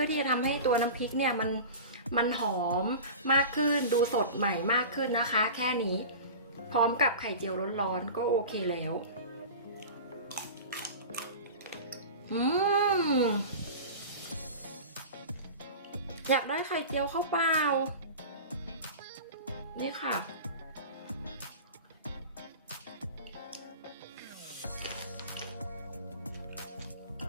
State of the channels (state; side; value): inverted; both; correlation -0.33